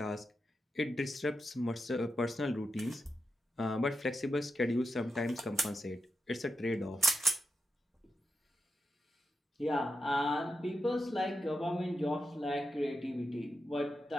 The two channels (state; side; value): normal; both; correlation 0.87